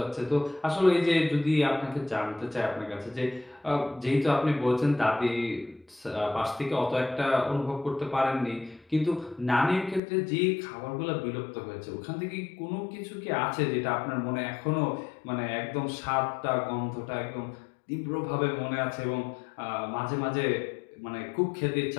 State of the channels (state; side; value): drops out; right; at 10.0 s